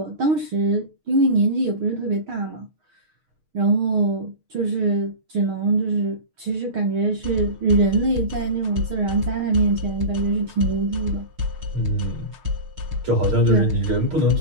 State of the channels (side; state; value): left; late; 6.5 ms